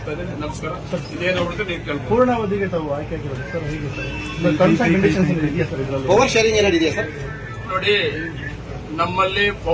ಇದ್ದೇನೆ. ನಮಸ್ಕಾರ. ಇದೇನು ಹೊರತು ನೀವು ಕೇಳ್ಬೋದು. ಪೂರ್ಣಾವಧಿಗೆ ತಾವು ಆಯ್ಕೆ ಆಗಿರೋದು ಸರ್, ಹೇಗೆ ಸರ್ ಟರ್ಮ್ಸ್ ಅಂಡ್ ಕಂಡೀಷನ್ಸ್ ಇದೆಯಾ ಸರ್ ಇದರಲ್ಲಿ? ಪವರ್ ಶೇರಿಂಗ್ ಏನಾದ್ರು ಇದೆಯಾ ಸರ್? ನೋಡಿ, ನಮ್ಮಲ್ಲಿ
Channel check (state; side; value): identical; both; correlation 1.00